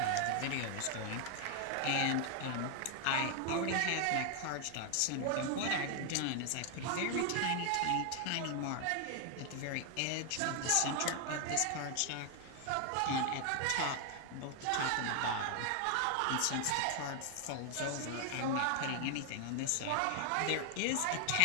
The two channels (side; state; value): both; different; correlation 0.00